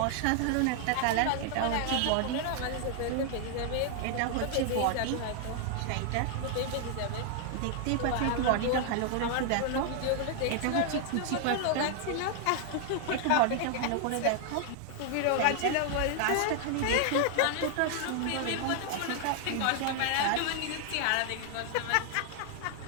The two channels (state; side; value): different; both; correlation 0.00